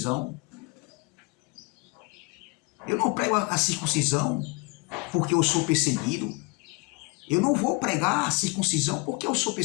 Eu não prego a circuncisão porque eu sou perseguido. Eu não vou pregar a circuncisão porque eu sou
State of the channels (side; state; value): right; quieter; 28.4 dB